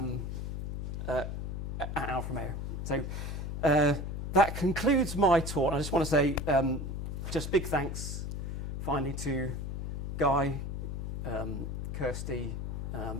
at Alfa Romeo. So that concludes my talk. I just want to say just big thanks finally to Guy, Kirsty,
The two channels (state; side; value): noise; left; hum, 4 dB below the sound